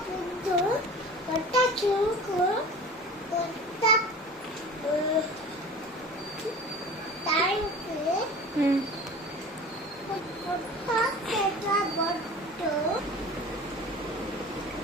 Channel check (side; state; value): both; normal; correlation 0.39